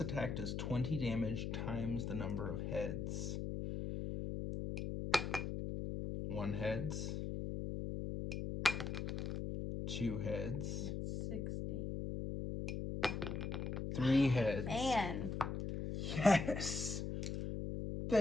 does 20 damage times the number of heads. 1 heads. 2 heads. That's 60. 3 heads. Man. Yes!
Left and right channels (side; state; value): left; noise; hum, 3 dB below the sound